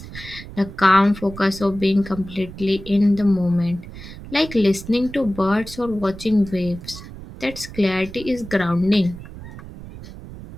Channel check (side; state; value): right; noise; rumble, 14 dB below the sound